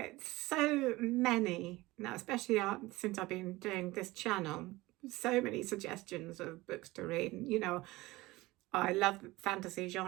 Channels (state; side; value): quieter; left; 19.9 dB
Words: so many now, especially since I've been doing this channel, so many suggestions of books to read. I love fantasy